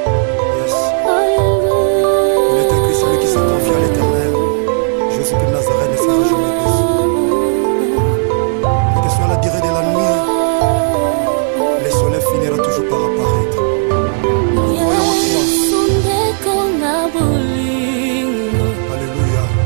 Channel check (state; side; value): silent; left; 65 dB below the other